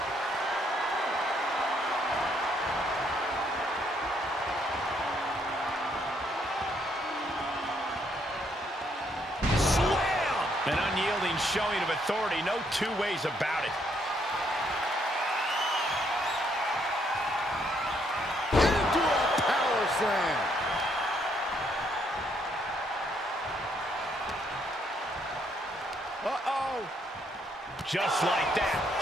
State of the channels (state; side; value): normal; both; correlation 0.71